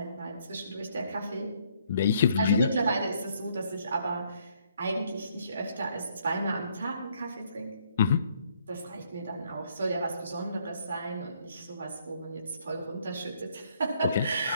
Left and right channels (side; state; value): both; inverted; correlation -0.68